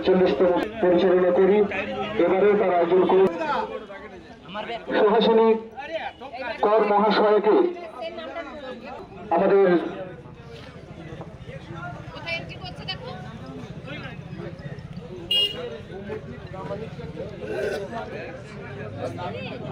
পরিচালনা করি। এবারে তার আয়োজন করি সুহাসিনী কর মহাশয়কে আমাদের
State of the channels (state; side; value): identical; both; correlation 1.00